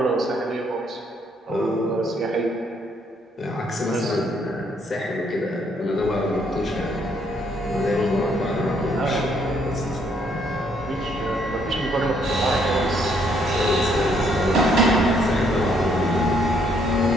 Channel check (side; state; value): both; normal; correlation 0.69